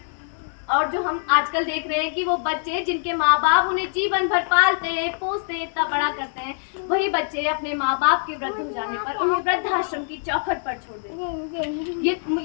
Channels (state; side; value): silent; right; 63 dB below the other